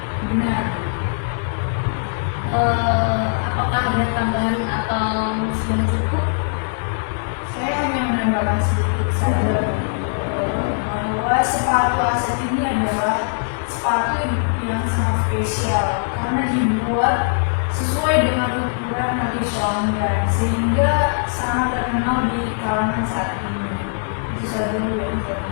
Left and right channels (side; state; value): right; silent; 65 dB below the other